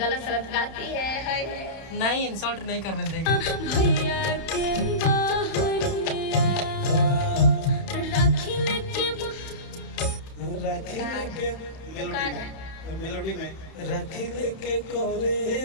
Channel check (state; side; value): late; right; 31 ms